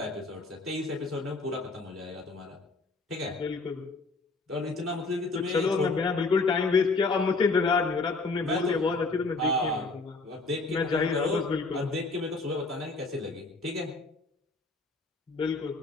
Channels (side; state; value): right; quieter; 3.7 dB